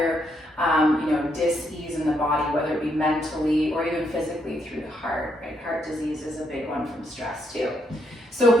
dis-ease in the body, whether it be mentally or even physically through the heart, right? Heart disease is a big one from stress too. So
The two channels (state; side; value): normal; both; correlation 0.76